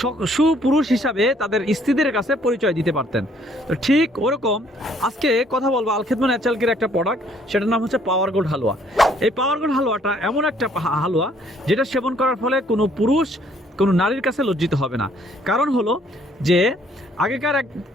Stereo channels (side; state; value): both; normal; correlation 0.64